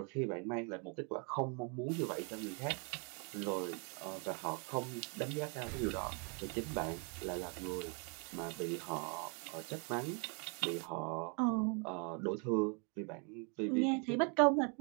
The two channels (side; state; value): left; quieter; 36.3 dB